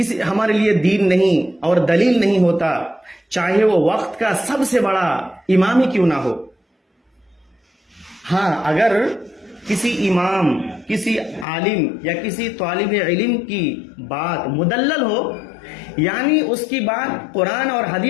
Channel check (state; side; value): drops out; right; at 11.5 s